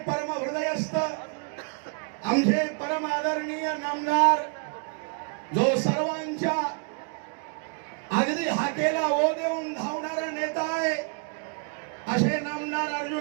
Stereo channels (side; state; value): left; quieter; 35.9 dB